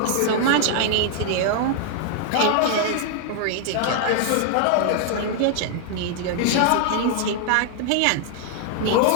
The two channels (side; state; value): both; different; correlation 0.00